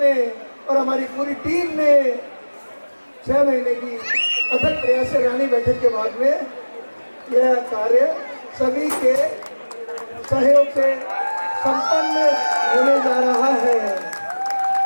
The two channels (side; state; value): both; inverted; correlation -1.00